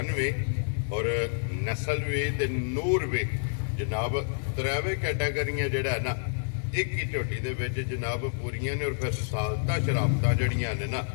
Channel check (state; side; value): silent; right; digital silence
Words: ਵੀ ਔਰ ਨਸਲ ਵੀ ਤੇ ਨੂਰ ਵੀ ਜਨਾਬ ਤਰਾਵੇ ਕੈਟਾਗਰੀਆਂ ਜਿਹੜਾ ਨਾ ਇੱਕ ਹੀ ਝੋਟੀ ਦੇ ਵਿੱਚ ਜਨਾਬ ਪੂਰੀਆਂ ਨੇ। ਔਰ ਫਿਰ ਸਾਲਤਾ ਸ਼ਰਾਬਤਾਂ ਜਿਹੜੀਆਂ ਨੇ ਨਾ